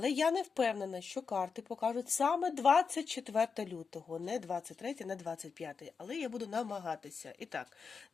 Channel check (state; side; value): quieter; right; 5.4 dB